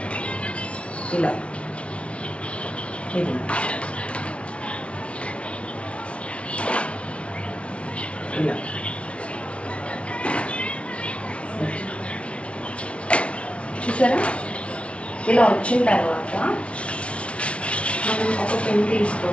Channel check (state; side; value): late; right; 0.061 ms